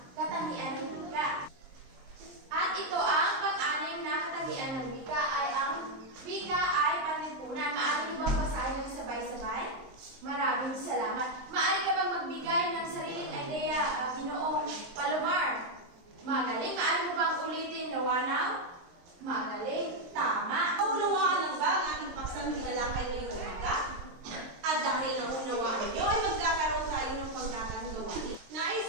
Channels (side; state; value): left; late; 23 ms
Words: katangian ng wika. At ito ang pang-anim na katangian ng wika ay ang wika ay panlipunan. Maaari mo bang basahin ng sabay-sabay? Maraming salamat. Maaari ka bang magbigay ng sariling idea, Ginoong Palomar? Magaling. Maaari mo bang ulitin, Nawanaw? Magaling. Tama. Naunawaan lang ba ang ating paksang tinalakay ngayong umaga? At dahil naunawaan niyo, ay magkakaroon tayo ng pangkatang gawain. Nais